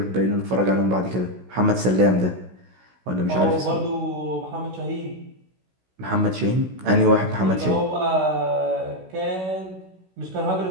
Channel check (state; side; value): late; left; 16 ms